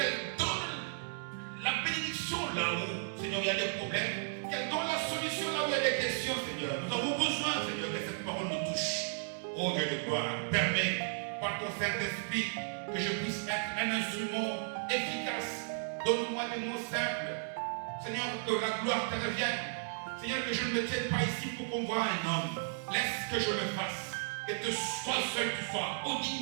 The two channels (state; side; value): silent; left; digital silence